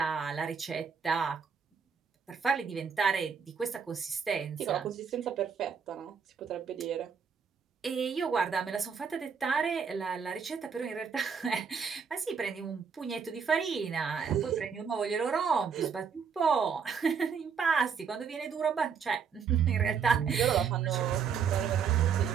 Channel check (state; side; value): quieter; left; 6.4 dB